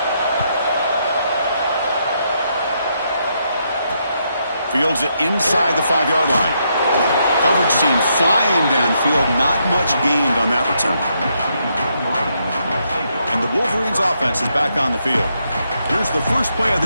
Fields it inside the 5-yard line. Coverage team flying downfield. Not much gained on that return. And the Wolverines offense is back on the field. Here's the first play of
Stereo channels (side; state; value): both; inverted; correlation -0.78